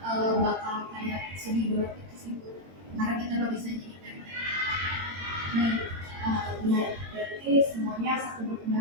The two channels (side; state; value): left; late; 22 ms